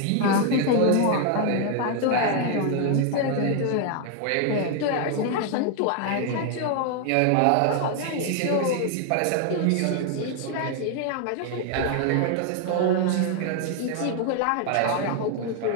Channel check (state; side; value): different; both; correlation 0.00